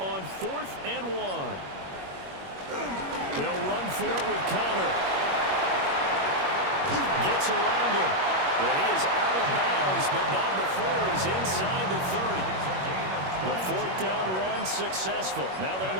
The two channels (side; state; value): left; late; 21 ms